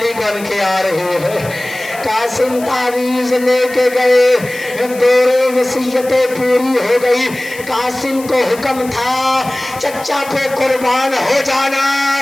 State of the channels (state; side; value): noise; left; hiss, 17 dB below the sound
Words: بن کے آ رہی ہے۔ قاسم تعویذ لے کے گئے، دورے وصیتیں پوری ہو گئی۔ قاسم کو حکم تھا چچا پہ قربان ہو جانا،